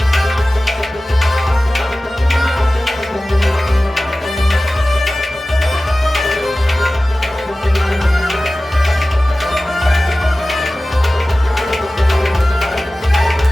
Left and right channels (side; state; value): both; normal; correlation 0.96